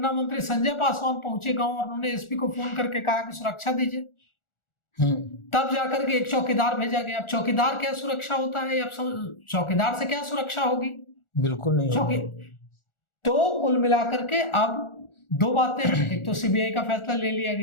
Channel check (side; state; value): right; late; 1.4 ms